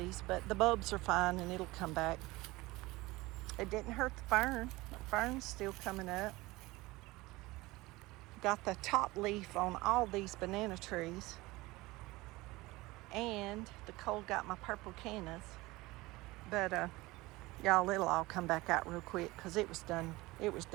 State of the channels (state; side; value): quieter; left; 20.7 dB